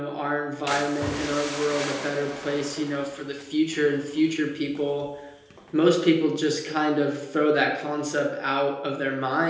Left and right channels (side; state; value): both; identical; correlation 1.00